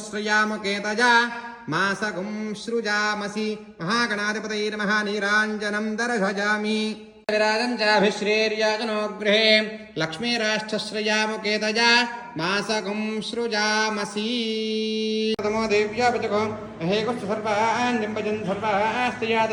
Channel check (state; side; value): identical; both; correlation 1.00